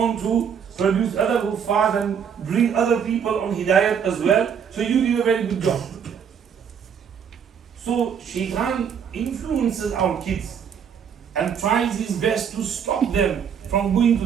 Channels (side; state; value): left; quieter; 7.5 dB